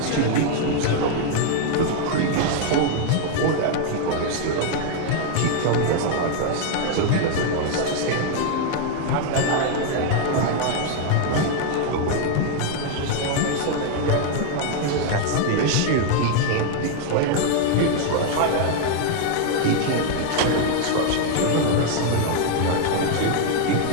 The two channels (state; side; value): different; both; correlation 0.00